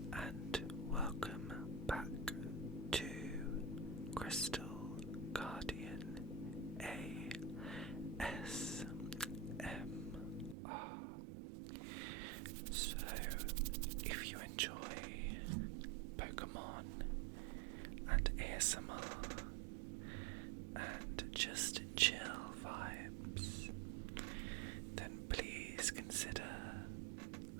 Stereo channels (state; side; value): drops out; left; at 10.6 s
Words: and welcome back to Crystal Guardian ASMR. So, if you enjoy Pokémon and ASMR and just chill vibes, then please consider